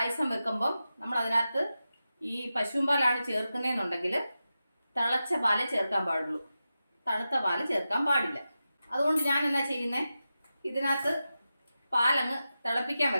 വെക്കുമ്പം നമ്മൾ അതിനകത്ത് ഈ പശുവും പാലാണ് ചേർക്കുന്നതെന്നുണ്ടെങ്കിൽ തിളച്ച പാല് ചേർക്കാൻ പാടുള്ളൂ, തണുത്ത പാല് ചേർക്കാൻ പാടില്ല. അതുകൊണ്ട് ഞാൻ എന്നാ ചെയ്യുന്നത്, ഇതിനകത്ത് പാലങ്ങ് തിളപ്പിക്കാൻ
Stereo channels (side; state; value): both; inverted; correlation -0.92